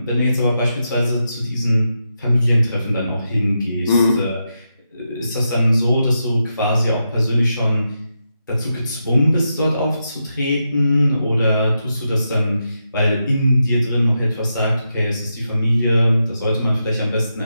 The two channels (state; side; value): inverted; both; correlation -0.86